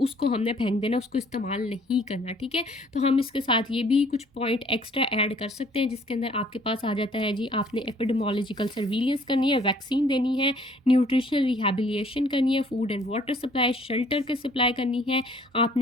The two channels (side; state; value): both; normal; correlation 0.59